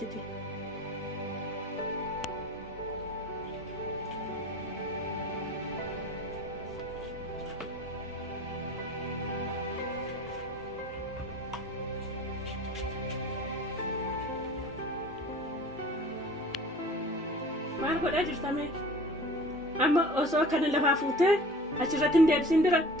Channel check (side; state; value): both; normal; correlation 0.43